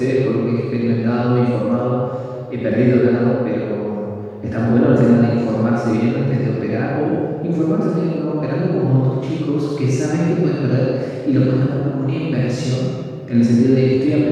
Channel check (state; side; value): identical; both; correlation 1.00